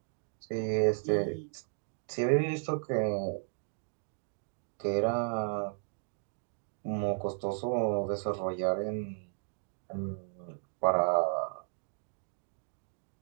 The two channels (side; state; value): left; silent; 55 dB below the other